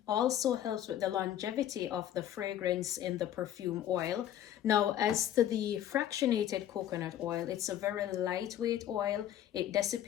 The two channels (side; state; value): right; quieter; 11.4 dB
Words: also helps with the longevity of the fragrance in the perfume oil. Now, as to the fractionated coconut oil, it's a very lightweight oil. It